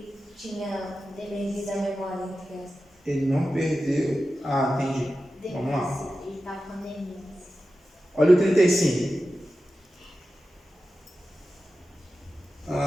tinha perdido a memória? Ele não perdeu. Entendi. Vamos lá. Ele está com demência. Olha o 35.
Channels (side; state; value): both; normal; correlation 0.93